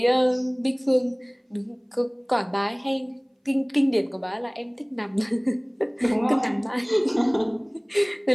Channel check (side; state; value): both; identical; correlation 1.00